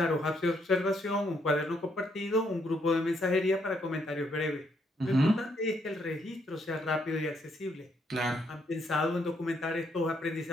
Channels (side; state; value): both; normal; correlation 0.73